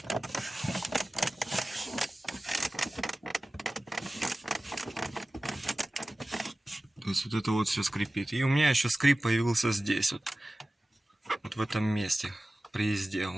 То есть вот это вот все скрипит. И у меня еще скрип появился здесь, вот в этом месте, при езде.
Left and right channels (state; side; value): normal; both; correlation 0.96